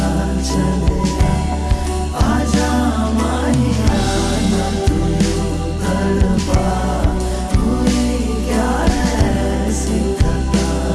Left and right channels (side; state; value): both; identical; correlation 1.00